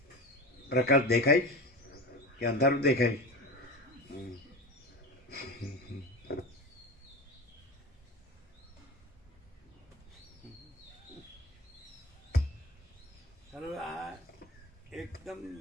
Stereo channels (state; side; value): normal; both; correlation 0.29